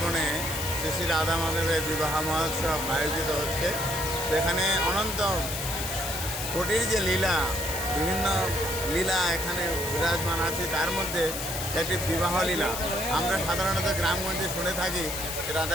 বনে শ্রী শ্রী রাধা মাধবের বিবাহ মহোৎসব আয়োজিত হচ্ছে। এখানে অনন্ত কোটির যে লীলা, বিভিন্ন লীলা এখানে বিরাজমান আছে। তার মধ্যে একটি বিবাহ লীলা। আমরা সাধারণত গ্রামগঞ্জে শুনে থাকি যে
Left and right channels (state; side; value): noise; left; hiss, 5 dB below the sound